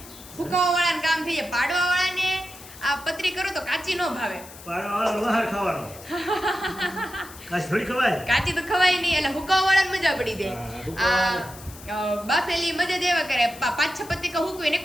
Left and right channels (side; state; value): left; noise; hiss, 17 dB below the sound